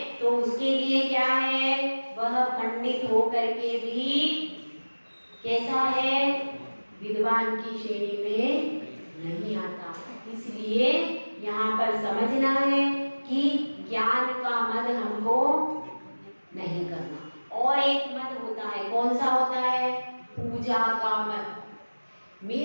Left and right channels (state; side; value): inverted; both; correlation -1.00